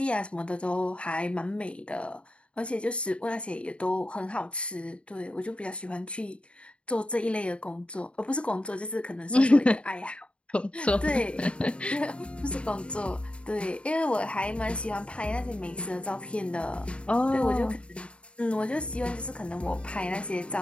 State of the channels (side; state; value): right; late; 0.059 ms